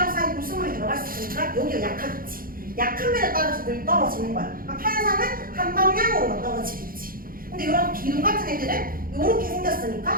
사이 불순물이 들어갈 수 있으니까 여기가 약하겠지. 약한 면에 따라서 늘 떨어지는 거야. 그러니까 판상은 한 방향으로만 떨어지겠지. 근데 이런 기둥 같은 애들은 이렇게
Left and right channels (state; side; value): late; left; 0.42 ms